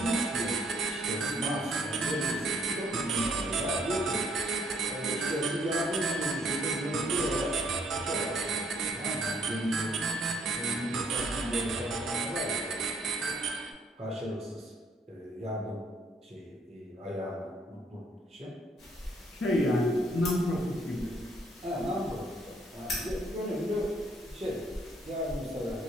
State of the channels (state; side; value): normal; both; correlation 0.66